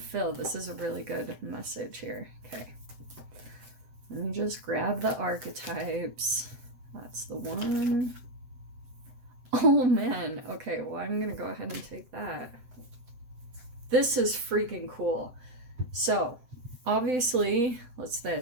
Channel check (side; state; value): left; late; 7.8 ms